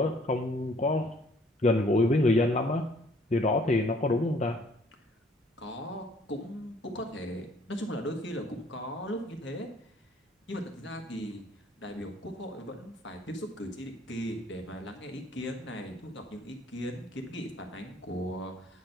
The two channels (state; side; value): normal; both; correlation 0.60